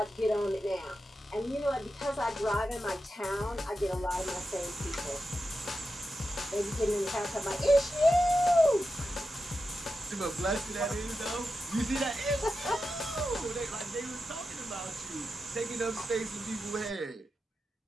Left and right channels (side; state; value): both; normal; correlation 0.90